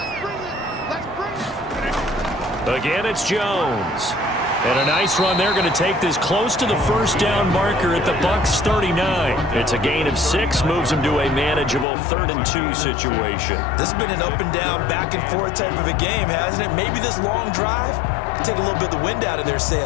Again, it's Jones. And a nice run. They're going to take this close to the first down marker at the Bucs 39. It's a gain of 6, moves them to a manageable 3rd and 2 situation. This has been an up and down, back and forth type of a game, hasn't it? Maybe this long drive can take a little bit of the wind out of their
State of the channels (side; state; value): right; drops out; at 11.9 s